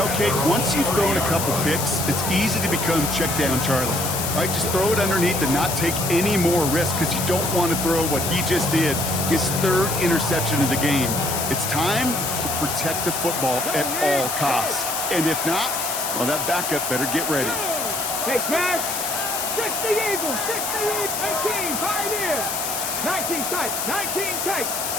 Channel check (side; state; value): left; noise; hiss, 3 dB below the sound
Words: Kate, once you've thrown a couple picks, it's easy to become check down Charlie. Right, just throw it underneath and not take any more risk because you don't want to throw what he just did, his 3rd interception of the game. It's time to protect the football at all costs. And if not, well, that backup better get ready. Hey, Cash. 60 Eagles. 60 Eagles. 18. Pioneers. 19 tight. 19 tight.